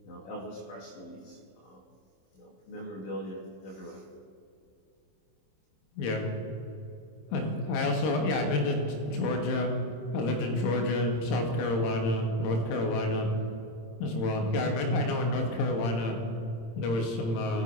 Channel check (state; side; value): late; right; 26 ms